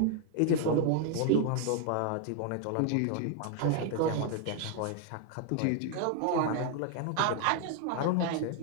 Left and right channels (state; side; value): different; both; correlation 0.00